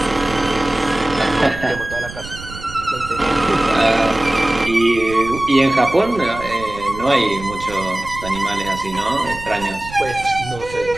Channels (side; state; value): right; noise; rumble, 13 dB below the sound